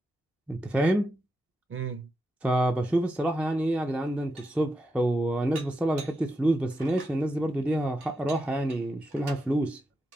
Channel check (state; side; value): normal; both; correlation 0.87